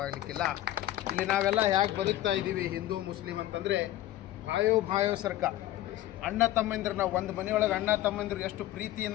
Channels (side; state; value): right; quieter; 14.4 dB